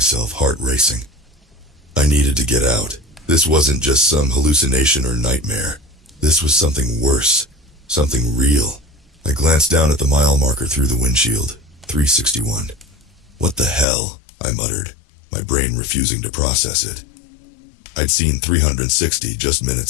heart racing. I needed to get out. This wasn't just some hallucination or nightmare. This was something worse, something real. I glanced down at the mile marker through the windshield, 361. What the hell? I muttered, my brain refusing to process it. I'd seen 360 just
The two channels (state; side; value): drops out; right; at 13.9 s